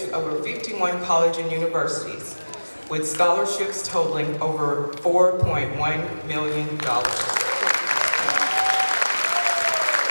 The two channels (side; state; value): both; inverted; correlation -1.00